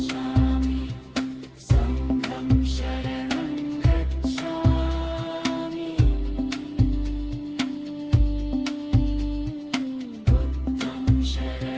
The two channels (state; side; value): identical; both; correlation 1.00